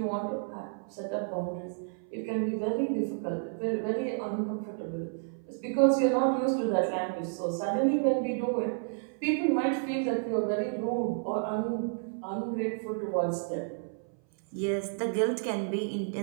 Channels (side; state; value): left; silent; 57 dB below the other